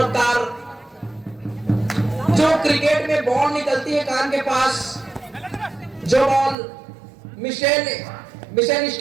जो क्रिकेट में बॉल निकलती है कान के पास, जो बॉल मिशेल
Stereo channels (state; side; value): drops out; left; at 6.6 s